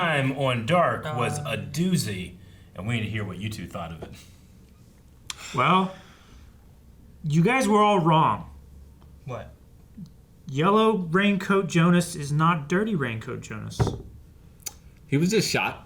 on Dark was a doozy, and we need to hear what you two thought of it. Well, you guys were all wrong. What? Yellow Raincoat Jonas is not Dirty Raincoat Jonas. He was just shot.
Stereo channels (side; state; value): both; identical; correlation 1.00